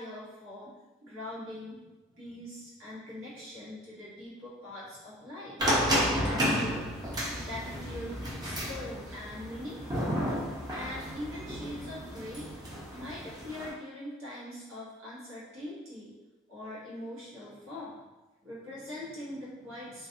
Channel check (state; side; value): normal; both; correlation 0.44